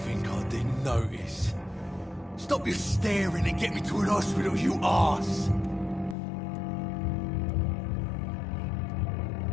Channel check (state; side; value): drops out; right; at 6.2 s